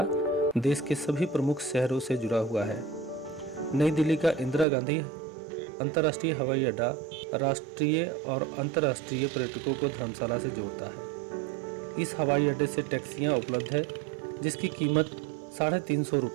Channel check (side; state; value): left; drops out; at 4.7 s